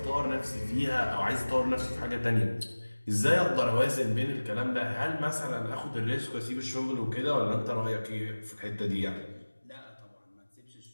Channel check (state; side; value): inverted; both; correlation -1.00